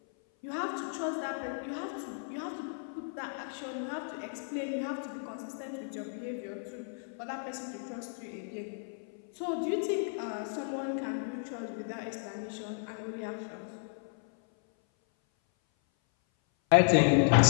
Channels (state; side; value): silent; right; 55 dB below the other